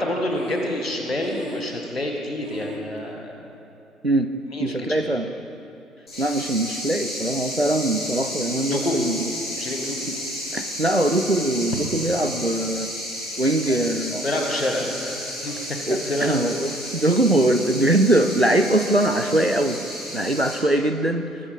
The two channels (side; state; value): both; normal; correlation 0.59